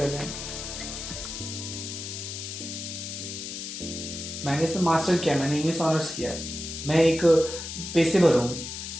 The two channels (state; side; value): noise; left; hiss, 7 dB below the sound